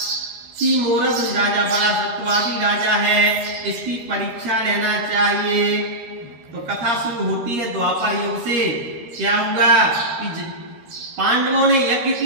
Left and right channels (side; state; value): left; late; 13 ms